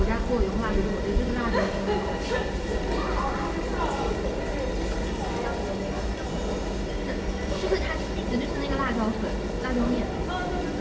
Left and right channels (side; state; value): both; identical; correlation 1.00